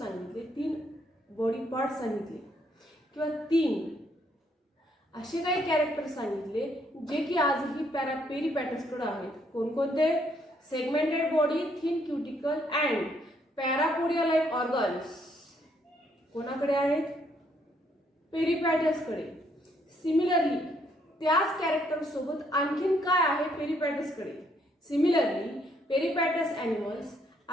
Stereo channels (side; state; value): both; normal; correlation 0.70